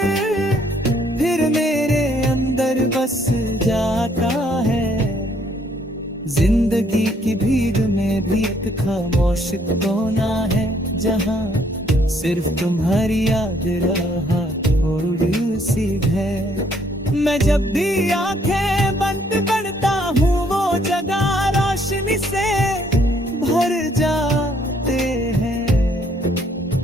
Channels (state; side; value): normal; both; correlation 0.66